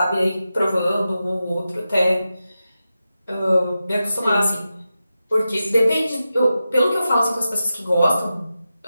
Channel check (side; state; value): both; inverted; correlation -0.91